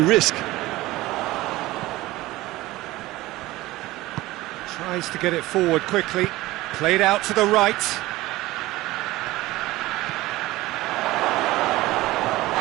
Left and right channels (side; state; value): left; quieter; 18.3 dB